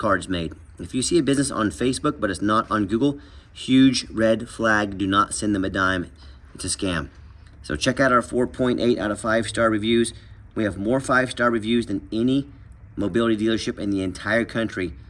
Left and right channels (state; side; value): identical; both; correlation 1.00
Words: made. If you see a business on Facebook but it's not on Google, huge red flag. Do not send them a dime. It's a scam. So check out our 4.8 out of 5-star reviews. We have more 5-star reviews than any mobility dealership in the entire country.